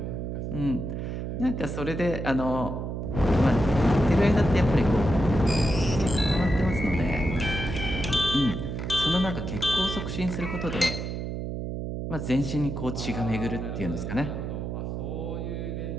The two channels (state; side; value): noise; right; hum, 4 dB below the sound